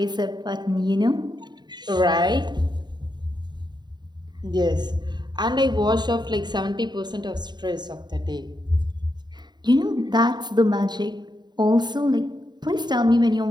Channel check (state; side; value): late; left; 0.21 ms